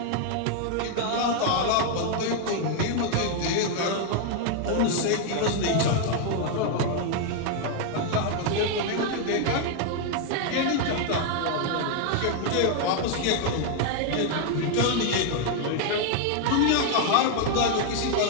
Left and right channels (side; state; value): both; different; correlation 0.00